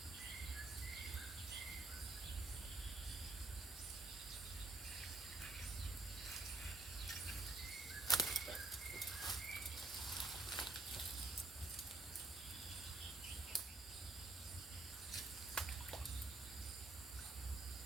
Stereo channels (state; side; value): quieter; left; 3.1 dB